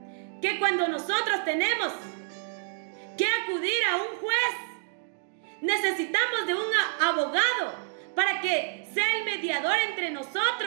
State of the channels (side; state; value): left; silent; 59 dB below the other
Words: que cuando nosotros tenemos que acudir a un juez, necesitamos de un abogado para que sea el mediador entre